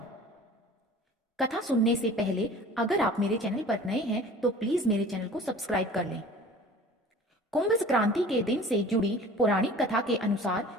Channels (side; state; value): both; normal; correlation 0.44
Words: कथा सुनने से पहले अगर आप मेरे चैनल पर नए हैं तो प्लीज मेरे चैनल को सब्सक्राइब कर लें। कुंभ संक्रांति के दिन से जुड़ी पौराणिक कथा के अनुसार